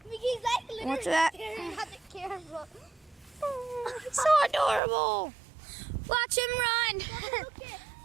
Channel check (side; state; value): left; drops out; at 4.8 s